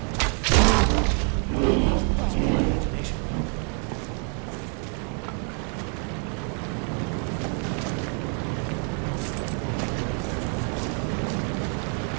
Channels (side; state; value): left; quieter; 39.1 dB